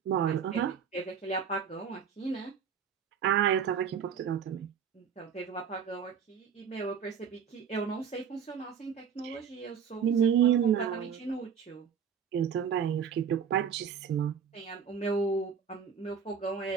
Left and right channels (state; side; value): quieter; left; 7.3 dB